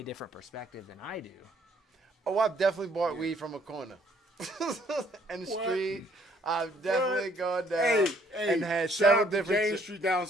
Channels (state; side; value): normal; both; correlation 0.64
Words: different perspective than I do. Oh, I've definitely bought weed from a corner. In the street. I've definitely gone down and had shout several out to different. James Street down